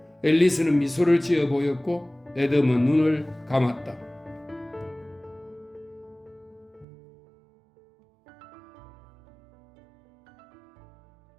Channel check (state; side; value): drops out; left; at 6.9 s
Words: 앨리스는 미소를 지어 보였고 애덤은 눈을 감았다.